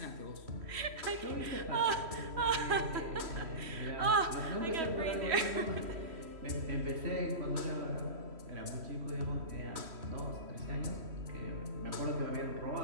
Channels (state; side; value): late; left; 3.1 ms